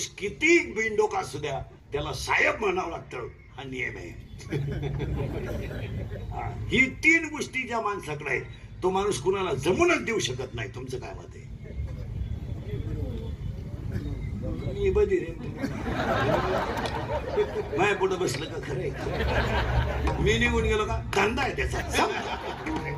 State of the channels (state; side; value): identical; both; correlation 1.00